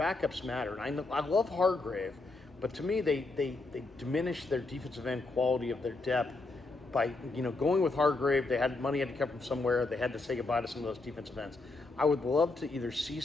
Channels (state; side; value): quieter; right; 3.4 dB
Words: matter. And I love Hargrave, but to me, they diminish their defensive end quality of their depth by, you know, going with Hargrave. They had money had to come from somewhere. They had to say goodbye to some of those defensive ends. I would love to either see